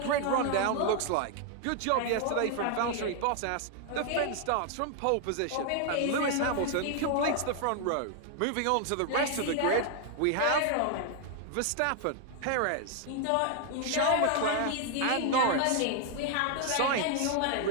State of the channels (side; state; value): both; different; correlation 0.00